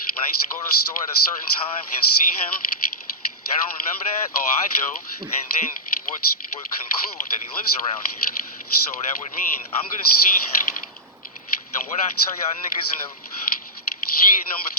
when I used to go to the store at a certain time and see him? Y'all don't remember that? Oh, I do. And then would conclude that he lives around here. So that would mean I'm gonna see him. And what I tell y'all niggas in the year number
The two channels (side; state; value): both; normal; correlation -0.11